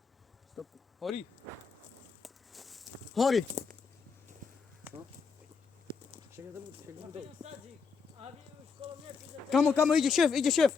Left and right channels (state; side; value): quieter; right; 5.3 dB